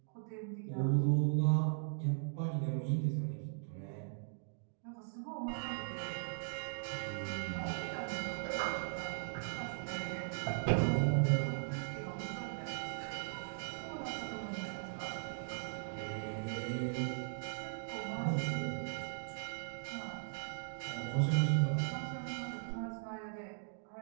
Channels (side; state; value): left; silent; digital silence